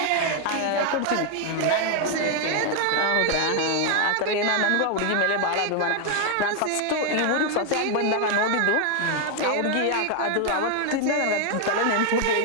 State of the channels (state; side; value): different; both; correlation 0.00